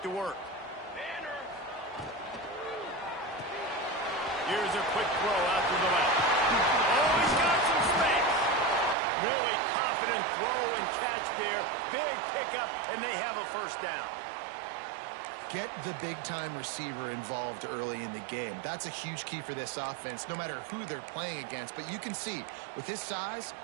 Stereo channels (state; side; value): drops out; left; at 9.0 s